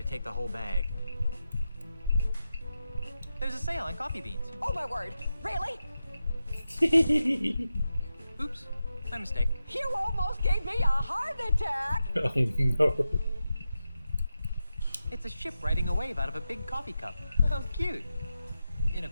take the whole bag. There's a sale on coffee beans. Oh my word, really? Oops, my mistake. You almost gave me a heart attack. Oh no. It's a ship riding a wave out of a big coffee cup. How cute. In a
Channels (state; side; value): inverted; both; correlation -0.90